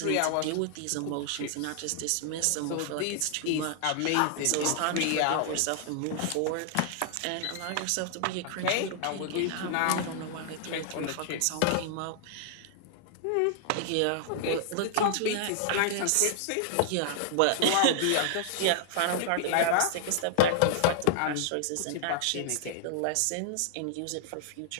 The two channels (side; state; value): both; different; correlation -0.01